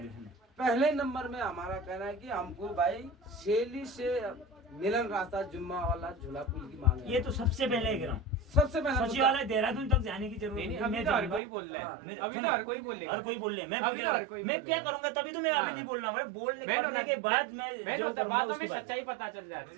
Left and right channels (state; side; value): drops out; left; at 11.4 s